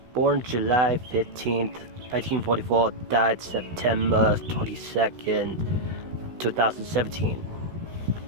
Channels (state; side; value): late; left; 16 ms